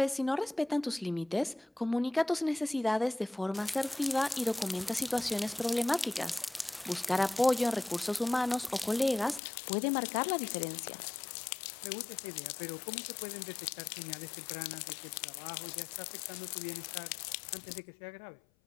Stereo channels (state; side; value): drops out; right; at 9.4 s